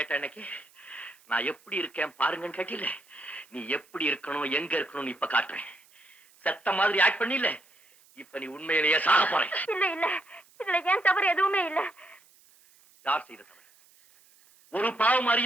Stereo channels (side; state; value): right; noise; hiss, 29 dB below the sound